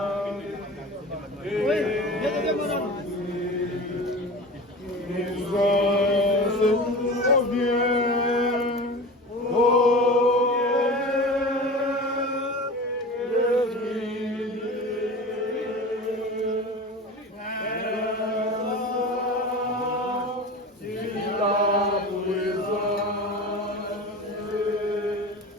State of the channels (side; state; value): both; normal; correlation 0.33